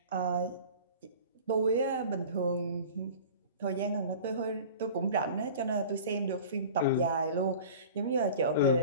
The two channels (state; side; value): inverted; both; correlation -0.40